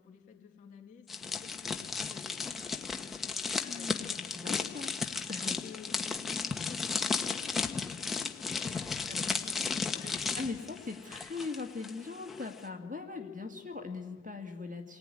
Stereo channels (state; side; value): quieter; right; 4.6 dB